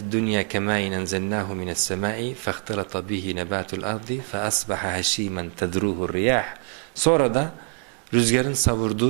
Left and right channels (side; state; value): left; quieter; 35.2 dB